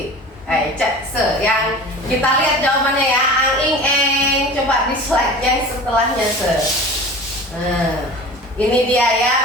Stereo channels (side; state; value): both; normal; correlation 0.38